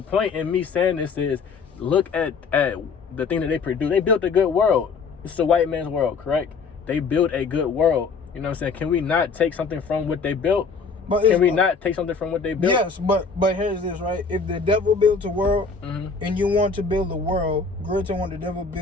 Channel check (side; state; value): right; quieter; 4.9 dB